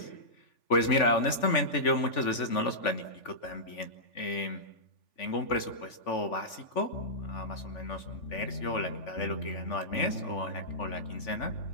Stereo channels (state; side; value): late; right; 3.5 ms